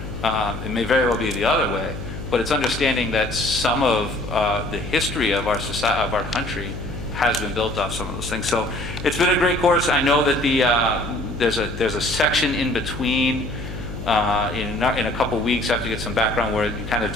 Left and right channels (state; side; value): noise; left; hum, 9 dB below the sound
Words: It may very well be the other way, but it's understanding that some of the history of our society, of our country, has been built off some of those things. So it's been a great course. I know that there's a section in between. In a couple weeks, I have to get some background where you kind of